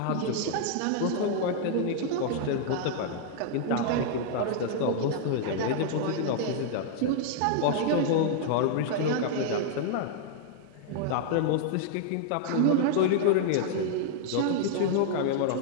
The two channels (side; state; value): both; different; correlation -0.01